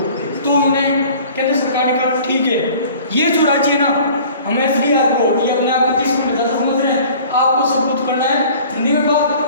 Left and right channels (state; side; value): inverted; both; correlation -0.48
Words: तो उन्होंने केंद्र सरकार ने कहा ठीक है, ये जो राज्य है ना हम SDR को ये अपने आप को 30 मिनट ज़्यादा समझ रहे हैं, आपको सब कुछ करना है हिंदी में बात,